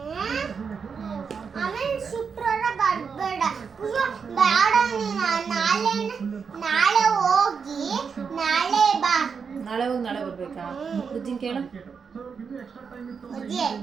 ಶುಕ್ರವಾರ ಬರ್ಬೇಡ, ನಾಳೆ ಹೋಗಿ ನಾಳೆ ಬಾ. ನಾಳೆ ಹೋಗಿ ನಾಳೆ ಬರ್ಬೇಕಾ? ಬುಜ್ಜಿನ ಕೇಳು.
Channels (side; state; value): left; quieter; 6.0 dB